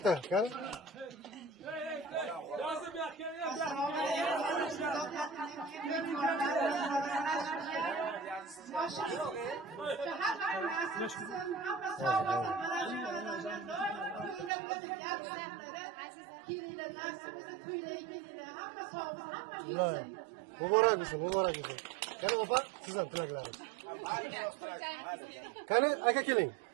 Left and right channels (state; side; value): drops out; left; at 14.5 s